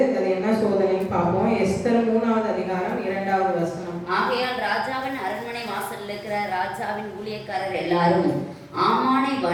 அது என்ன சோதனைன்னு பார்ப்போம். எஸ்தர் 3வது அதிகாரம் 2வது வசனம். ஆகையால் ராஜாவின் அரண்மனை வாசலில் இருக்கிற ராஜாவின் ஊழியக்காரர் எல்லாரும் ஆமானை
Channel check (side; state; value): both; identical; correlation 1.00